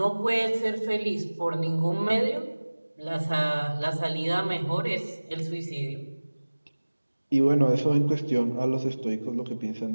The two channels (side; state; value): both; inverted; correlation -1.00